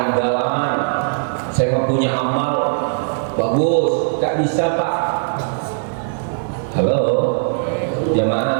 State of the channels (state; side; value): silent; left; digital silence